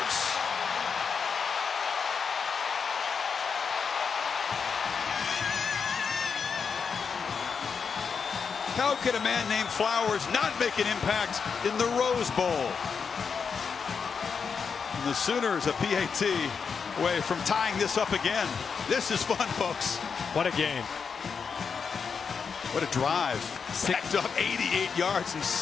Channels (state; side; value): quieter; right; 5.9 dB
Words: How could a man named Flowers not make an impact in the Rose Bowl? And the Sooners, a PAT away from tying this up again. This is fun, folks. What a game. What a drive. Backed up 88 yards in